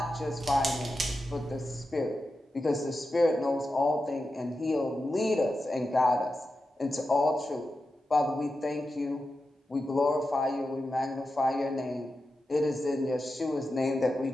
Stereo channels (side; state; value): both; normal; correlation 0.90